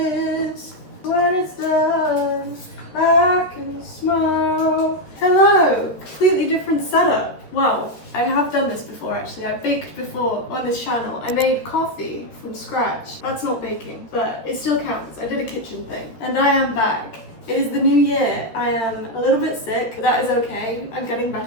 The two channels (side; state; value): right; late; 13 ms